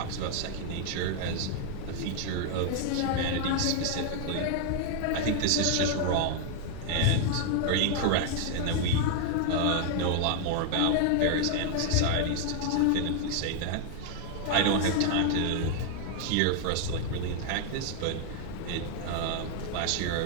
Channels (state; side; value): different; both; correlation 0.00